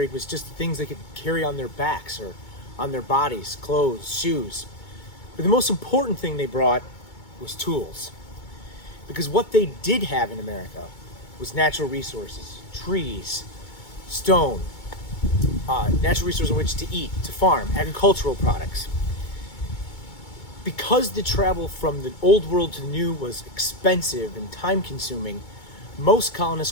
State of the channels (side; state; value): right; late; 2.2 ms